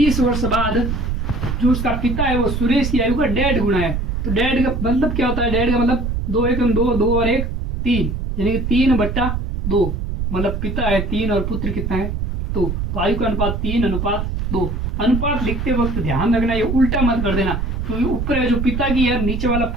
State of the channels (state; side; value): noise; right; rumble, 2 dB below the sound